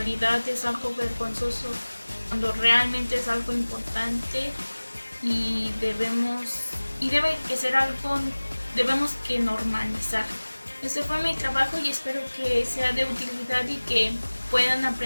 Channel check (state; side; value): inverted; both; correlation -1.00